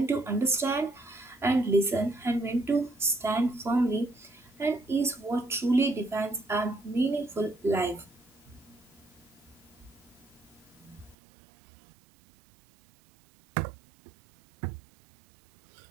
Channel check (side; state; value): left; drops out; at 11.2 s